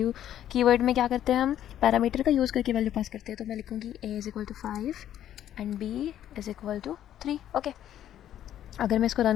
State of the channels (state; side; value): quieter; right; 11.2 dB